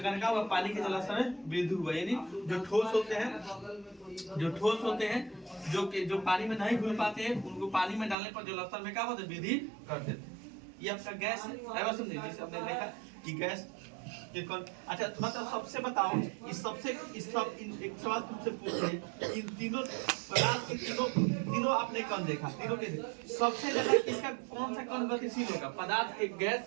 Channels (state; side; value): drops out; left; at 8.2 s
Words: क्या हुआ? पानी के जलस्तर में वृद्धि हुआ। यानी जो ठोस होते हैं जो पानी में नहीं घुल पाते हैं, उनको पानी में डालने पर जलस्तर में क्या होता है? वृद्धि कर देते हैं। ये आपका गैस है, बस में, जिसे हमने देखा कि गैस के कण। अच्छा मतलब सबसे बताओ, एक सवाल तुमसे पूछते हैं, इन तीनों पदार्थ के तीनों आपने कण देखा, तीनों के सबसे ज्यादा किसका, कौन सा कण गतिशील होगा? पदार्थ के गैस